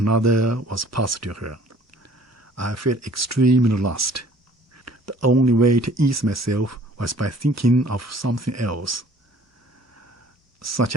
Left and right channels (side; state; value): both; normal; correlation 0.54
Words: was passed to her. I felt extremely lost. The only way to ease myself was by thinking of something else, such